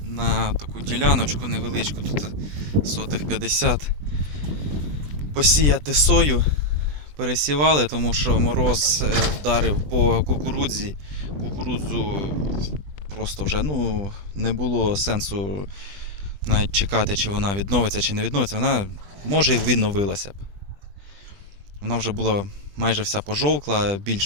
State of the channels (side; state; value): left; late; 20 ms